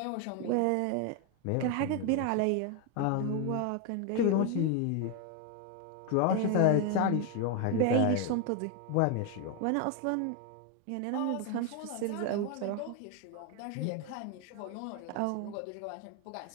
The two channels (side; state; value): both; different; correlation 0.01